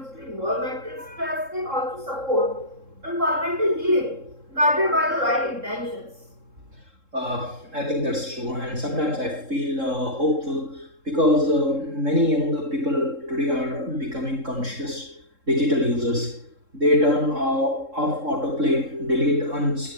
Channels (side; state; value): left; late; 3.7 ms